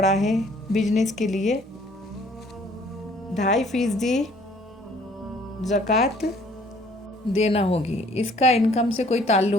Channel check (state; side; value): normal; both; correlation 0.58